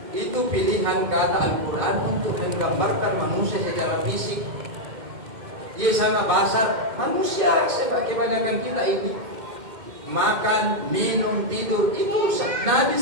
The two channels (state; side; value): late; left; 2.1 ms